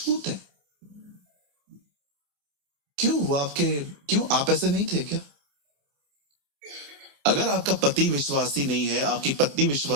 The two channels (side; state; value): left; late; 28 ms